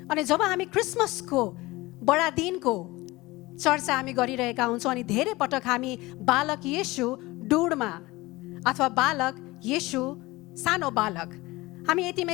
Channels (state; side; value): quieter; right; 20.7 dB